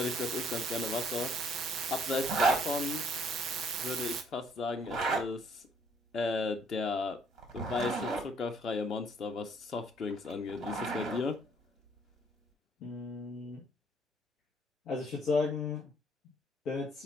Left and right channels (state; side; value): normal; both; correlation 0.64